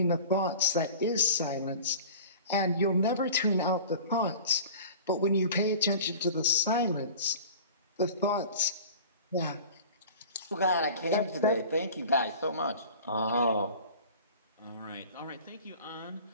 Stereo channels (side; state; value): both; inverted; correlation -0.40